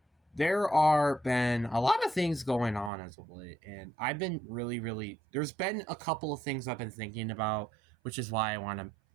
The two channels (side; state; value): left; drops out; at 2.9 s